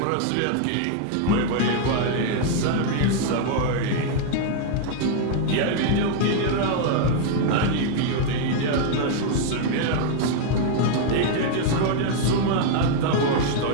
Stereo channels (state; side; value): different; both; correlation 0.00